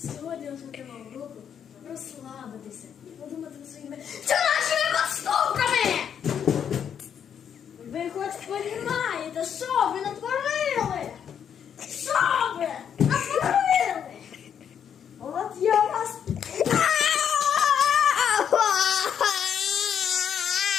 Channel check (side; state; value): right; quieter; 8.3 dB